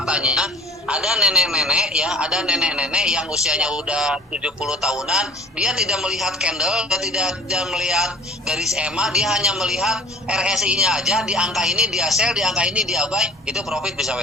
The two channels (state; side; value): normal; both; correlation 0.46